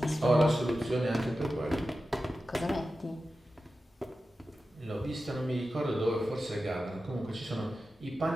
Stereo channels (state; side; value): normal; both; correlation 0.93